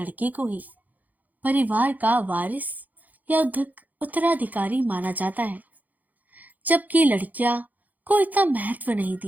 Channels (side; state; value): left; late; 0.081 ms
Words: को ही परिवार का वारिस या उत्तराधिकारी माना जाता है, जबकि लड़कियां को इतना महत्व नहीं